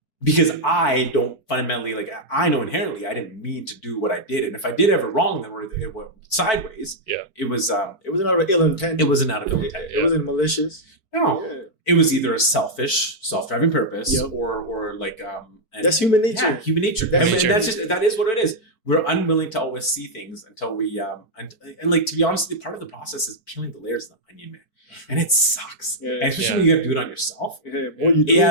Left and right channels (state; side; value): late; right; 4.5 ms